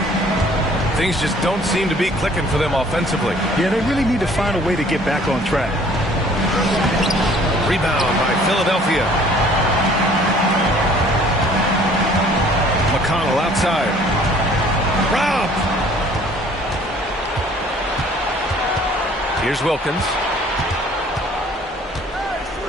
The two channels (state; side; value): normal; both; correlation 0.55